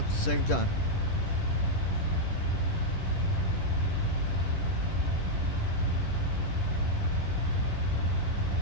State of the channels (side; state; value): right; late; 10 ms